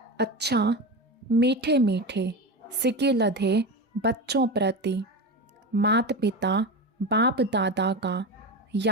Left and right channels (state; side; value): normal; both; correlation 0.21